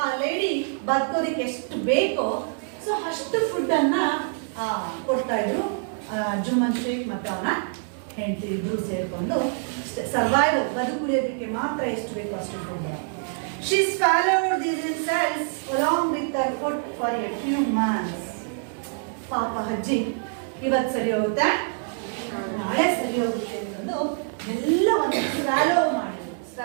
ಲೇಡಿ ಬದುಕೋದಿಕ್ಕೆ ಎಷ್ಟು ಬೇಕೋ ಸೊ ಅಷ್ಟು ಫುಡ್ ಅನ್ನ ಕೊಡ್ತಾ ಇದ್ರು. ಜುಮ್ಮನ್ ಶೇಖ್ ಮತ್ತೆ ಅವನ ಹೆಂಡತಿ ಇಬ್ರು ಸೇರ್ಕೊಂಡು ಸರ್ವೈವಲ್, ಬದುಕುಳಿಯೋದಕ್ಕೆ ಮಾತ್ರ ಎಷ್ಟು ಬೇಕೋ ಅಷ್ಟು food. She swallowed these insults along with her food for a few months. ಪಾಪ ಅಜ್ಜಿ, ಇವತ್ತು ಸರಿ ಹೋಗುತ್ತೆ, ನಾಳೆ ಸರಿ ಹೋಗುತ್ತೆ ಅನ್ನೋದು ಎಲ್ಲವನ್ನು ಸ್ವ್ಯಾಲೋ ಮಾಡಿ.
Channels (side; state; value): left; silent; 61 dB below the other